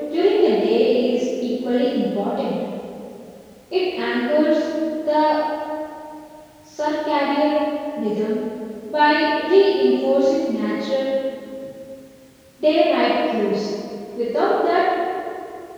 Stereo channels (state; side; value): identical; both; correlation 1.00